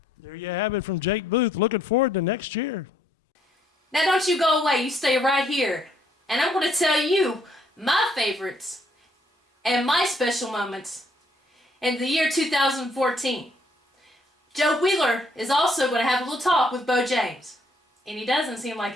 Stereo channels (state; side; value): normal; both; correlation 0.68